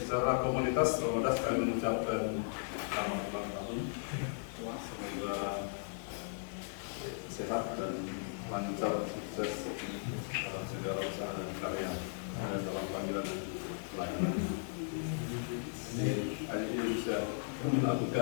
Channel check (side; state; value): right; silent; digital silence